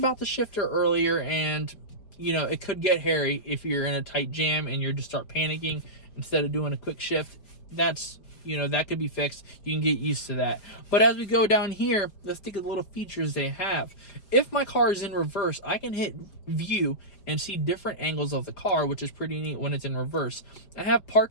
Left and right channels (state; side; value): late; right; 5.0 ms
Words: the shifter earlier, and it could get hairy if you're in a tight jam and you just start panicking instead of doing a quick shift. That's that could be fixed. You can get used to that. But as we go down here, let's think of the little features they have. If my car is in reverse, I can hit view and see different angles of the car, which is pretty neat when it's in reverse. I have